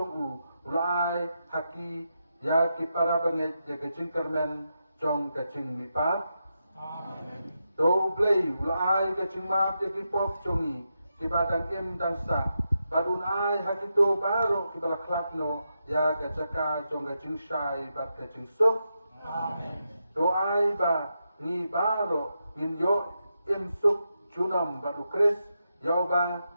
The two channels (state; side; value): inverted; both; correlation -0.86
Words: ulai haki ya ki para banget ya ga ching kermen chong ga ching mi pa amen to play ulai ga ching ma ya ki pop chongi ki badang im dan sa badun ai haki to baro ki bala klakno ya ga chaka chong ga ching shai bat ga ching so amen to ai ba ni baro in yo imsuk junam baru kris yauba